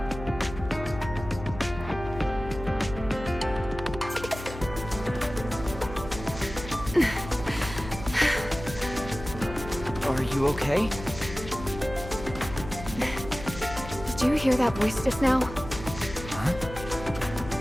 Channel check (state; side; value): noise; left; hum, 12 dB below the sound